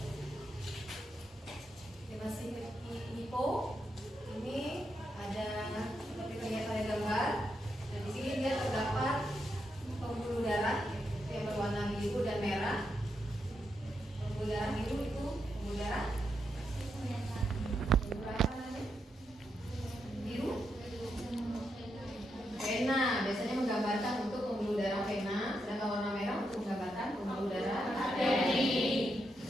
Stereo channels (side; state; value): both; normal; correlation 0.83